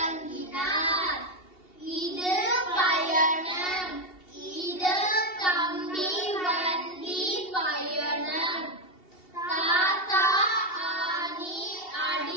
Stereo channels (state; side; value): late; right; 2.7 ms